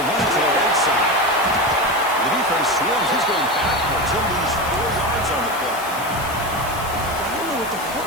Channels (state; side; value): noise; left; hiss, 13 dB below the sound